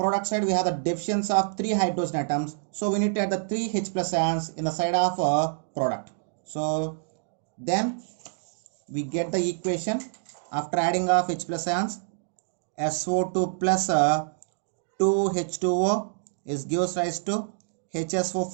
side we have the deficiency of 3 hydrogen atoms, so we need to add the 3 H plus ions in the side of product. So then we get the equation after adding of H plus ions, SO2 plus 2H2O is gives rise to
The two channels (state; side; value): silent; left; digital silence